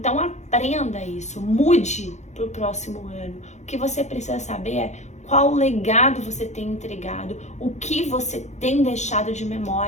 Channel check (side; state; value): right; late; 0.33 ms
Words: aprenda isso, mude para o próximo ano. O que você precisa saber é qual legado você tem entregado, o que você tem deixado de